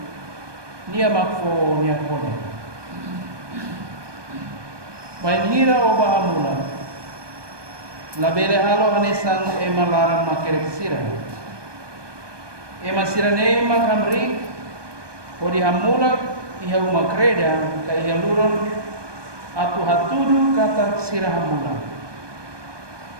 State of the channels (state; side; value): late; left; 1.2 ms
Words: nia makfo nia kole bain hira o bahamula labele halo hanesan emalaran makerek sira ema sirane makamri odi hamula iha umakreda ka iha luron atu hatudu kata sira hamula